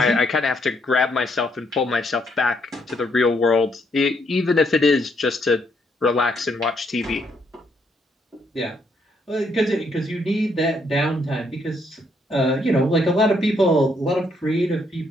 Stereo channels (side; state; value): both; normal; correlation 0.73